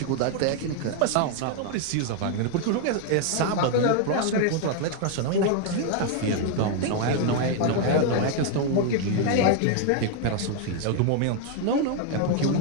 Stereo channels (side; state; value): both; different; correlation 0.01